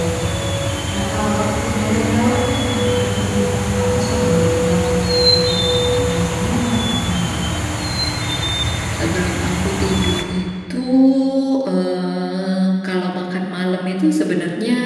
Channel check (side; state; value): both; identical; correlation 1.00